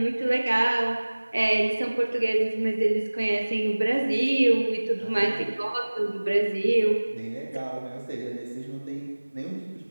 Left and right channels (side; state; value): both; inverted; correlation -1.00